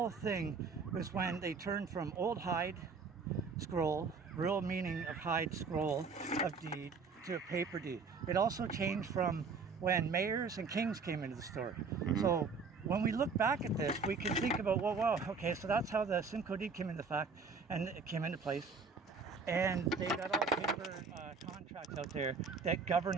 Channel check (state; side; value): quieter; left; 4.8 dB